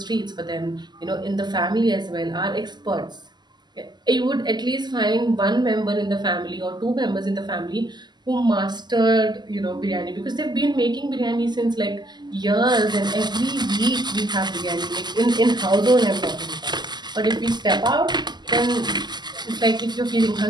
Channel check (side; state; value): left; late; 0.21 ms